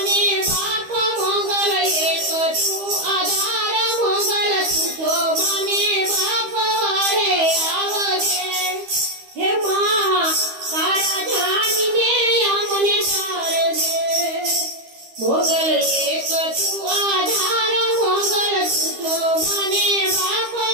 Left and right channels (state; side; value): late; left; 13 ms